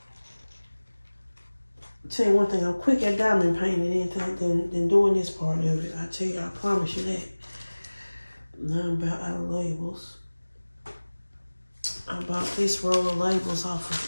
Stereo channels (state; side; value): inverted; both; correlation -1.00